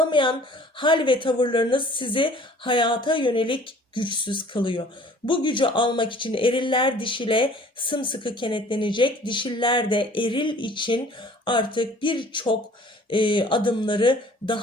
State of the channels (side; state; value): both; normal; correlation 0.52